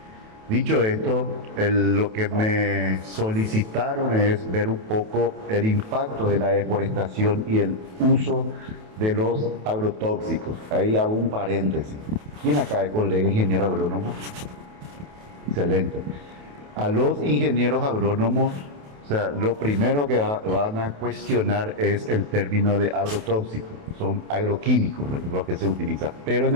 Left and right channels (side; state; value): left; late; 28 ms